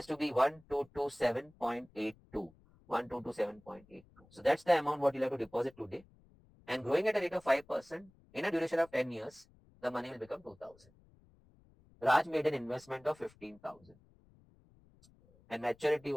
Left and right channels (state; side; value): noise; left; rumble, 28 dB below the sound